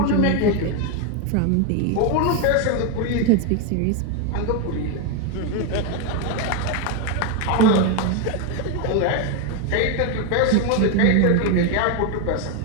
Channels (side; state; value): both; different; correlation 0.02